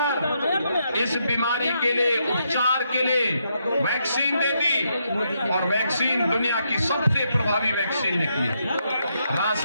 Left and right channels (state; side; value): inverted; both; correlation -0.79